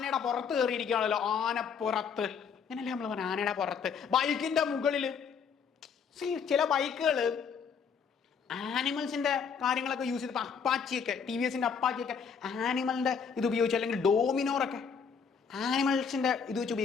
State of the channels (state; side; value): quieter; right; 6.4 dB